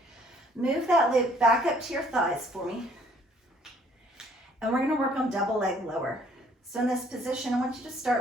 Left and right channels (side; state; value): both; normal; correlation 0.60